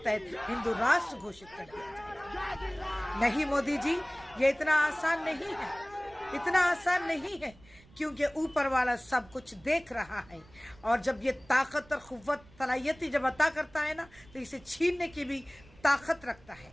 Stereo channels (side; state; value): right; noise; rumble, 25 dB below the sound